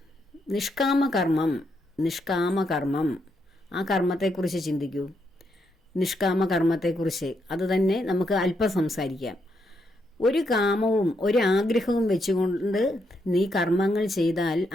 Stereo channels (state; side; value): normal; both; correlation 0.79